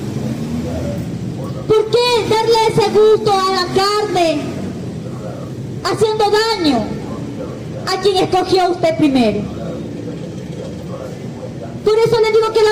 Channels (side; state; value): both; identical; correlation 1.00